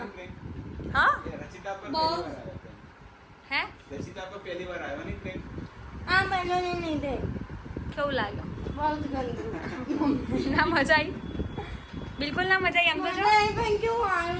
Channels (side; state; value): both; identical; correlation 1.00